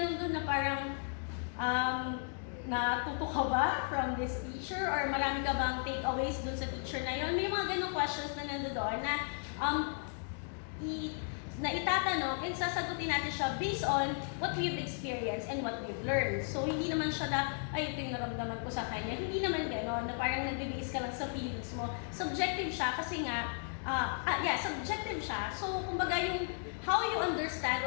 doon na parang natuto ka ba from this teacher or marami ka bang takeaways doon sa teacher na yon? May mga ganong questions na nandoon na itatanong and sasagutin natin siya based on what we've experienced and what we've learned. So, hindi naman siya na, ay, ito yung naramdaman ko sa kanya. Hindi naman gano'n, na parang nag-base ka lang sa feelings mo. Subjective siya kasi nga, subjective siya. So, kumbaga yung how you understand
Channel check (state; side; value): silent; right; 54 dB below the other